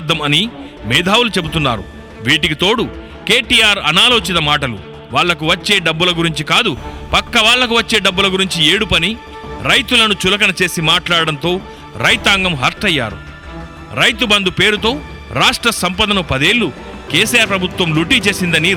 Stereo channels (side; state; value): both; identical; correlation 1.00